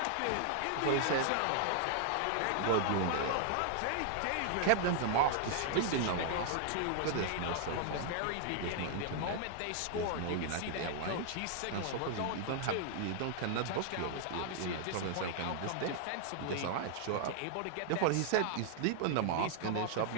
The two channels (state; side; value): different; both; correlation 0.00